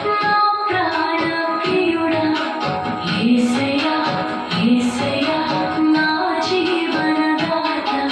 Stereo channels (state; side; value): identical; both; correlation 1.00